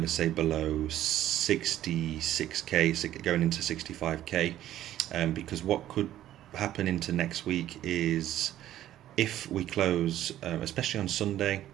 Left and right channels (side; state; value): left; quieter; 12.8 dB